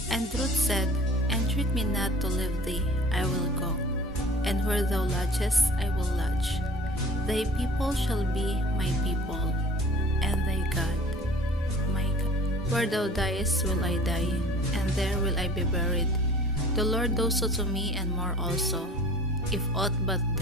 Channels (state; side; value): normal; both; correlation 0.45